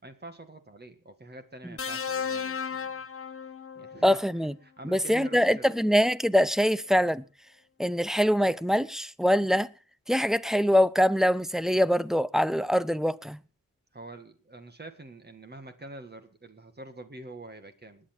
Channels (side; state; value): both; normal; correlation 0.92